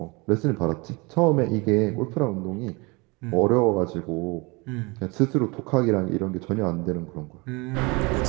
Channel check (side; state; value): left; quieter; 26.8 dB